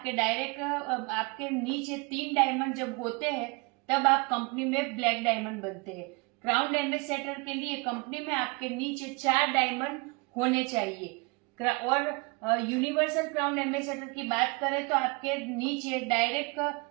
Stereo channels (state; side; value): quieter; left; 28.4 dB